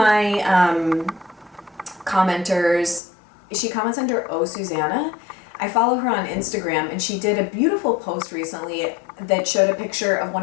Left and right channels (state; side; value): drops out; right; at 3.0 s